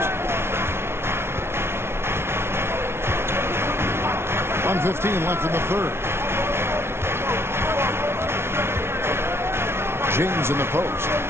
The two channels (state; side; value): late; left; 0.12 ms